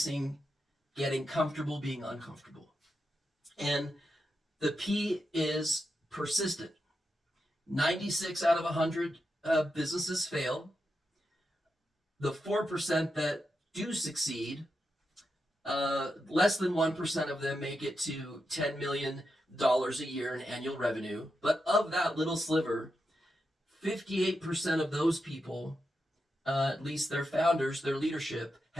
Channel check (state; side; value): normal; both; correlation 0.87